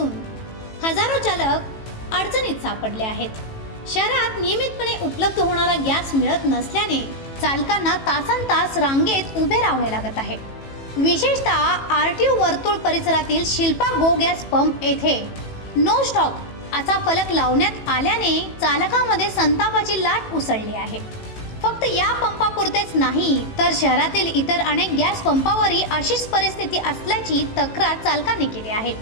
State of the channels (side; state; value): right; late; 18 ms